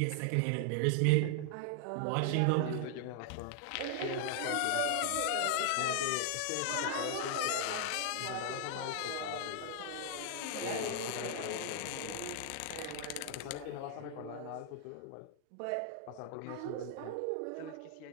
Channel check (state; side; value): different; both; correlation 0.00